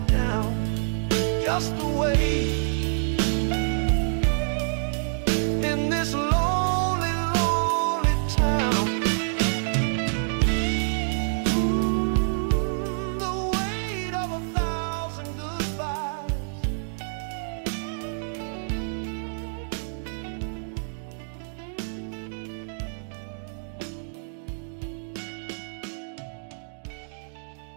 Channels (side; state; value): left; silent; digital silence